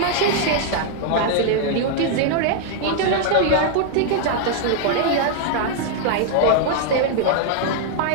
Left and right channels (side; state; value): both; different; correlation 0.00